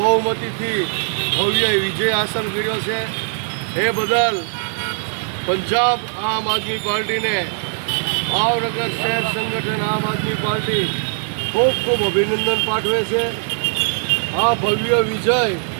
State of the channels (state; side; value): silent; left; 60 dB below the other